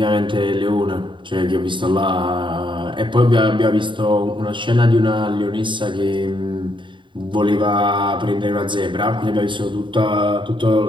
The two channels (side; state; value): left; late; 0.23 ms